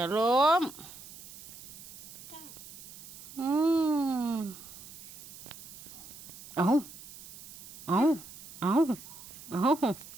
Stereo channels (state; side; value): noise; right; hiss, 16 dB below the sound